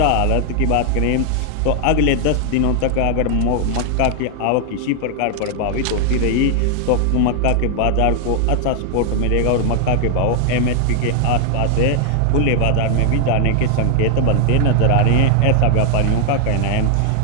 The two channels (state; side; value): different; both; correlation 0.00